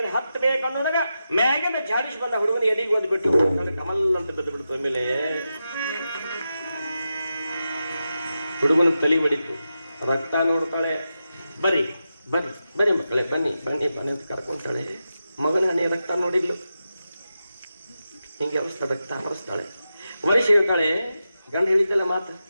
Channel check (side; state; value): both; inverted; correlation -0.89